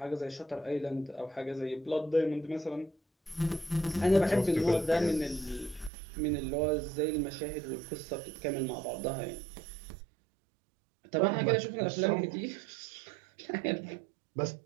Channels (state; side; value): drops out; left; at 5.9 s